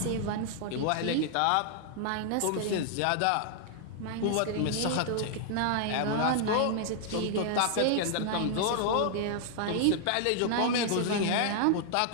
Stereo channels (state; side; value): different; both; correlation 0.00